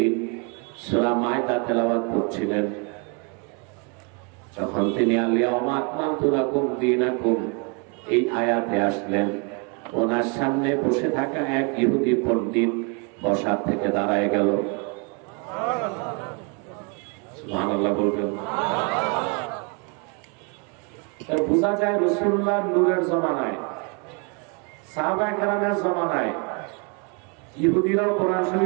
সূরা মায়দা তেলাওয়াত করছিলেন। যখন তিনি আল-ইয়াওমা আকমালতু লাকুম দীনাকুম এই আয়াতে আসলেন, ওনার সামনে বসে থাকা এক ইহুদি পণ্ডিত বসার থেকে দাঁড়ায় গেল। সুবহানাল্লাহ বলবেন। বোঝা যায় রাসূলুল্লাহ নূরের জমানায়, সাহাবায়ে কেরামের জমানায় ইহুদিরাও কোরআন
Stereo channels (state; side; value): quieter; left; 33.5 dB